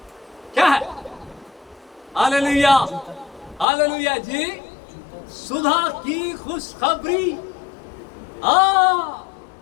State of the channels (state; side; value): drops out; right; at 3.7 s